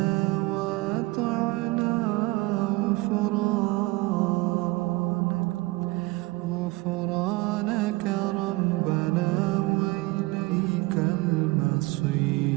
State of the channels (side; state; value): left; quieter; 22.3 dB